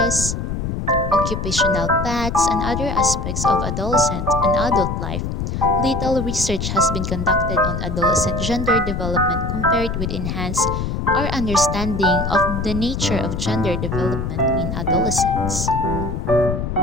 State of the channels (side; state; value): left; noise; rumble, 3 dB below the sound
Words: occupational paths, and other aspects of adolescent and adult life, little research has been conducted on adolescent gender development compared with enhance our understanding of the nature of gender development in adolescents.